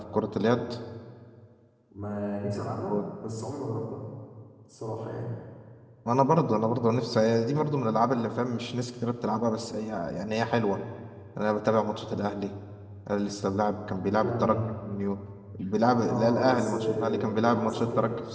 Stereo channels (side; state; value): both; identical; correlation 1.00